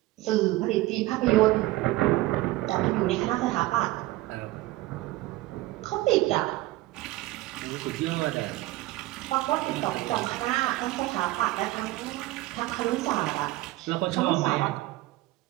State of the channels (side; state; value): left; quieter; 18.3 dB